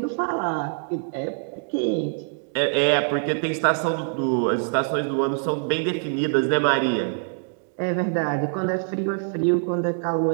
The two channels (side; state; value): left; silent; digital silence